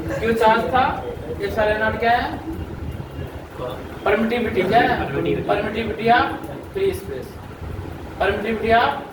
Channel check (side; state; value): both; identical; correlation 1.00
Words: Q charge था, एप्सिलॉन नॉट क्या है? परमिटिविटी। क्या है? Permittivity of free space.